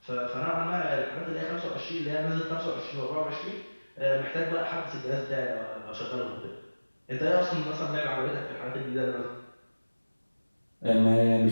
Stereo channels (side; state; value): both; inverted; correlation -1.00